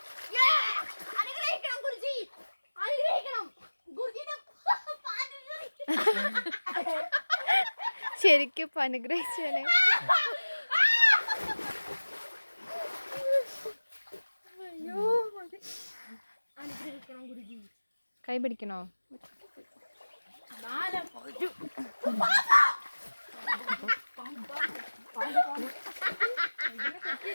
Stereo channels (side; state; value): both; inverted; correlation -1.00